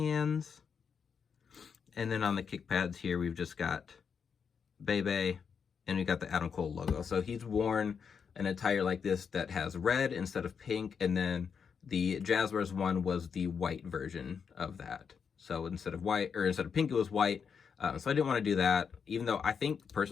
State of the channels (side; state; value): right; quieter; 6.5 dB